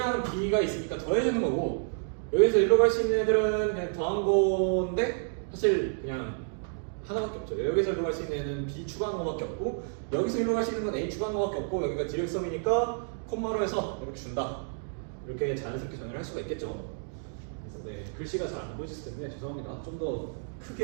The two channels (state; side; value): silent; left; digital silence